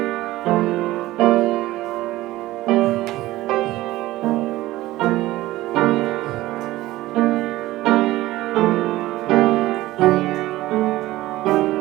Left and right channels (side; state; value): left; quieter; 17.0 dB